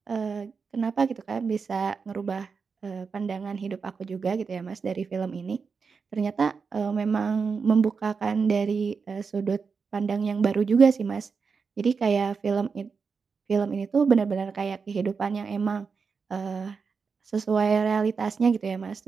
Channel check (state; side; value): quieter; left; 5.3 dB